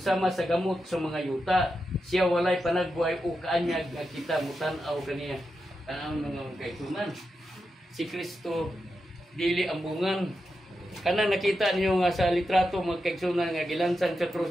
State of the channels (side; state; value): both; normal; correlation 0.88